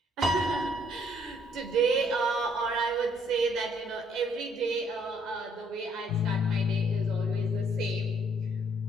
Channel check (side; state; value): both; normal; correlation 0.66